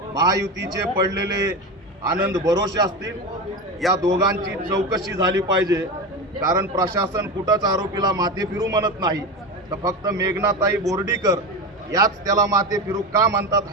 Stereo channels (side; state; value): both; normal; correlation 0.22